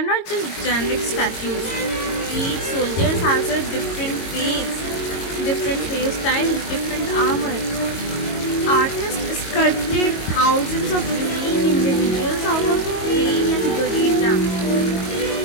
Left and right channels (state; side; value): late; right; 22 ms